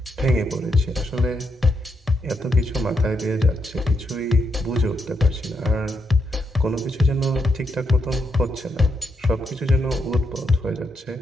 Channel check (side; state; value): both; normal; correlation 0.81